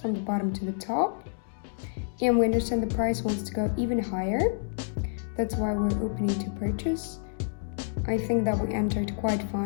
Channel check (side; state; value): right; silent; digital silence